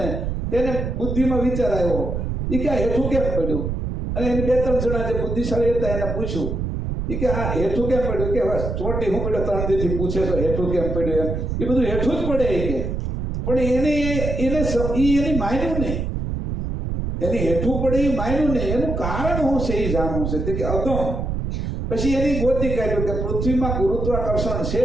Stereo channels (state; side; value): noise; right; rumble, 3 dB below the sound